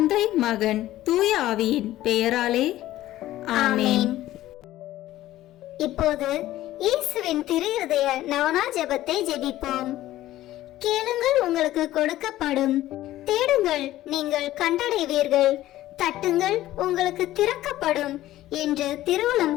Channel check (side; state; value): right; quieter; 14.8 dB